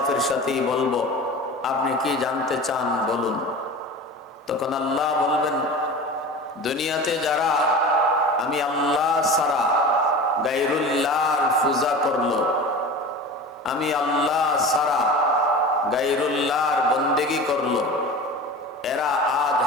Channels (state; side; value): normal; both; correlation 0.34